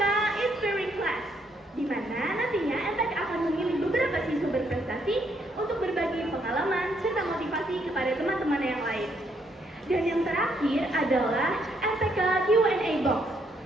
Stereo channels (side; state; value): both; normal; correlation 0.73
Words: Inspiring Class, di mana nantinya MPK akan memilih beberapa siswa berprestasi untuk berbagi pengalaman serta motivasi kepada teman-teman yang lain. Dan yang terakhir adalah MPK Q&A Box,